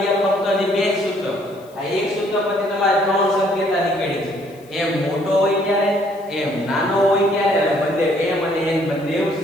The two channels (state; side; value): noise; left; hiss, 28 dB below the sound